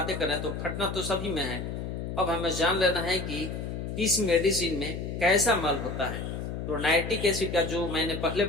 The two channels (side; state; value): left; noise; hum, 5 dB below the sound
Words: कर रहे हैं, तो फटना तो सभी में है। अब हमें जान लेना है कि किस मेडिसिन में कैसा मल होता है। तो नाइट्रिक एसिड का जो मैंने पहले